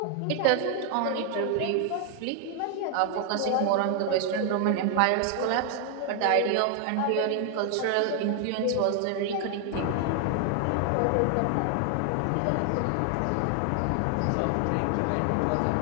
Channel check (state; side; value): different; both; correlation 0.00